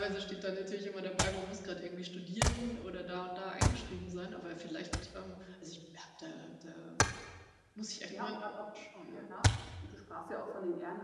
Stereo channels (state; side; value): identical; both; correlation 1.00